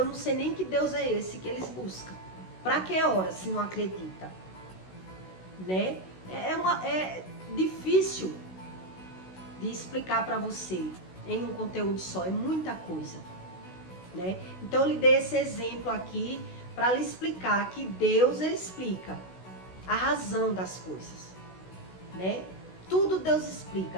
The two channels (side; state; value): right; late; 16 ms